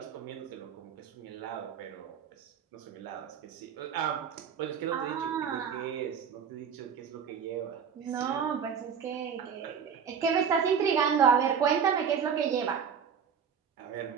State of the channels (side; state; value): left; quieter; 7.2 dB